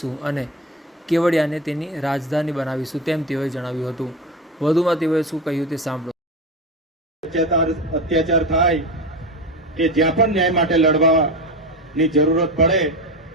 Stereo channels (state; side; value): normal; both; correlation 0.22